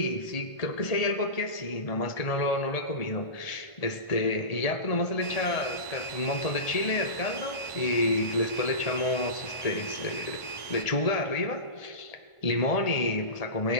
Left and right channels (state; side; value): late; right; 1.5 ms